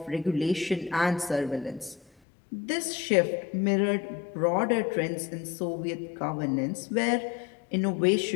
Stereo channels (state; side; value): drops out; right; at 2.1 s